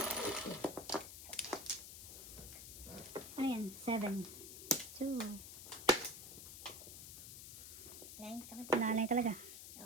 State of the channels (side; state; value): left; noise; hiss, 11 dB below the sound